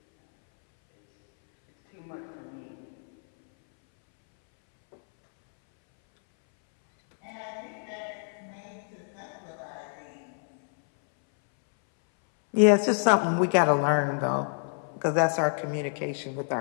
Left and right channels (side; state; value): right; silent; 60 dB below the other